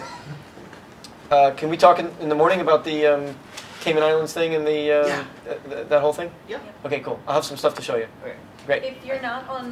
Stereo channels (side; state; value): both; identical; correlation 1.00